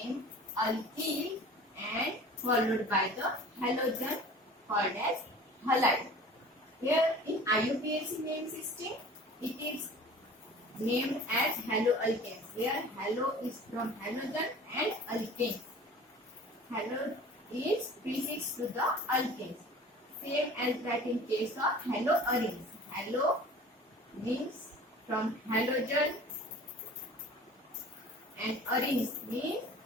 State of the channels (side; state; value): both; normal; correlation 0.43